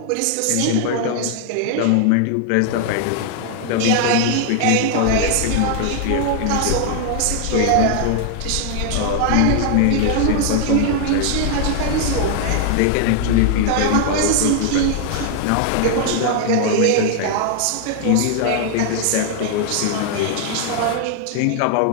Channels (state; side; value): different; both; correlation 0.00